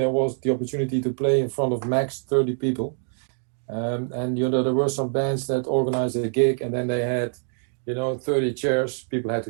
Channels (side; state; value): left; silent; digital silence